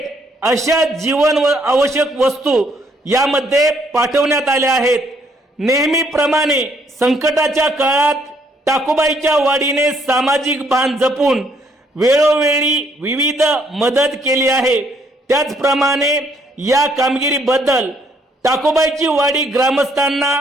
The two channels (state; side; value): normal; both; correlation 0.68